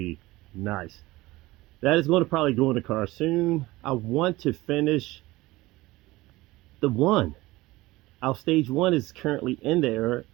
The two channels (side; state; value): left; quieter; 19.5 dB